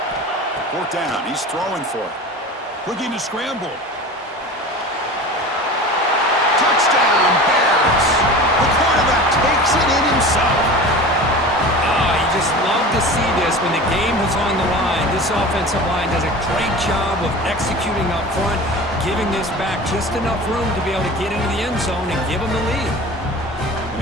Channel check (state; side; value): normal; both; correlation 0.35